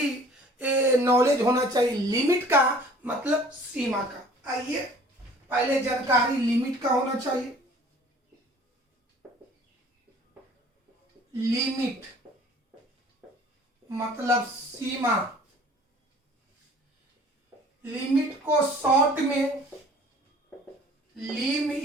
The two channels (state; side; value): normal; both; correlation 0.51